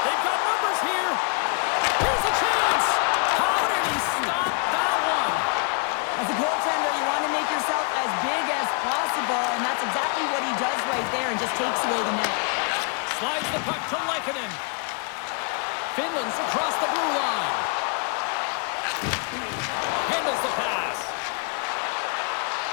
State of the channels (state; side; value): quieter; right; 37.3 dB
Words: They've got numbers here. Here's a chance. How did he stop that one? As a goaltender, you want to make yourself as big as possible, and that's exactly what he does right there and just takes away the net. Slides the puck to Lehkonen. Finland's across the blue line. Handles the pass.